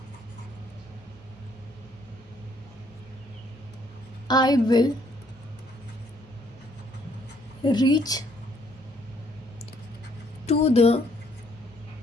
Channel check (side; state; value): both; normal; correlation 0.67